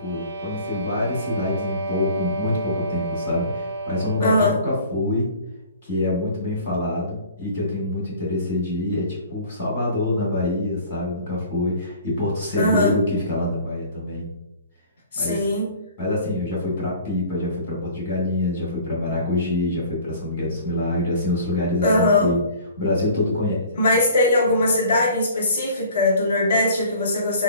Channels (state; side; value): inverted; both; correlation -0.48